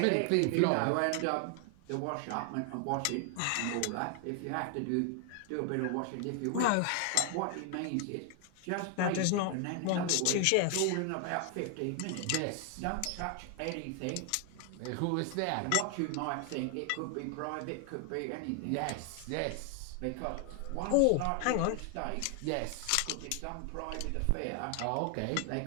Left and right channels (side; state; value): both; different; correlation 0.00